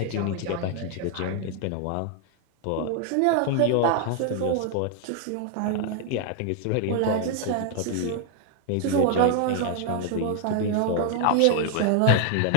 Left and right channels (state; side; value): different; both; correlation 0.00